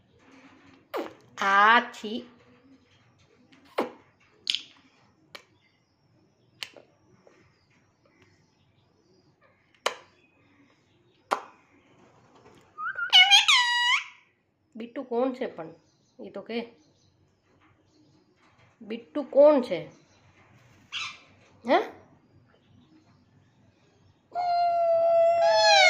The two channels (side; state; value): both; identical; correlation 1.00